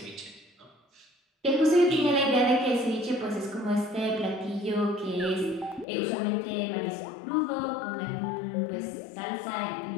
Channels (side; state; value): right; drops out; at 5.9 s